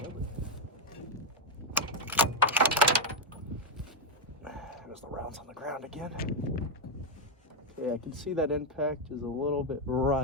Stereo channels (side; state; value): both; normal; correlation 0.02